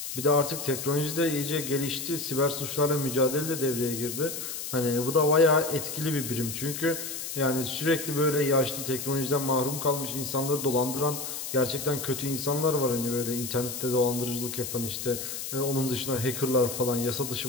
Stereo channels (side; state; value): left; noise; hiss, 6 dB below the sound